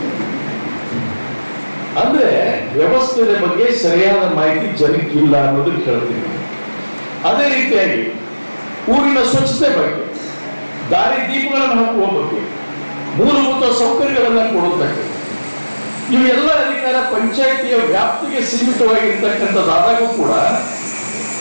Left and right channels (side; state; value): both; inverted; correlation -1.00